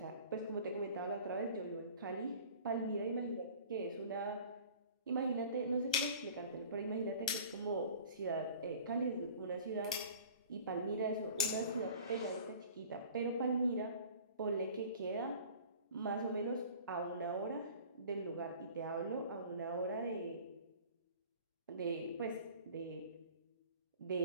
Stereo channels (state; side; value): inverted; both; correlation -0.45